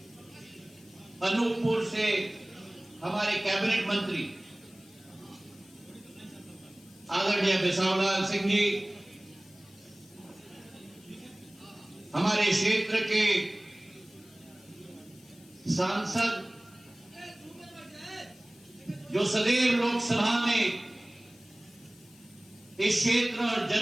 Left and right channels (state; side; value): noise; left; hiss, 26 dB below the sound